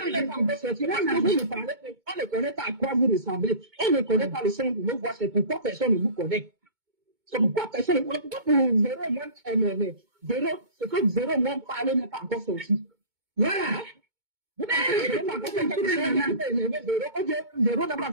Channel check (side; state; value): left; late; 2.2 ms